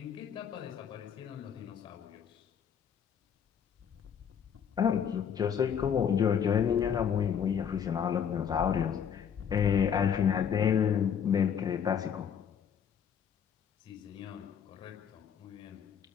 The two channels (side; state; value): right; quieter; 7.9 dB